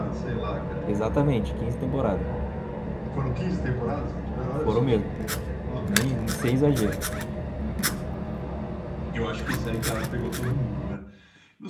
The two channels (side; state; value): both; identical; correlation 1.00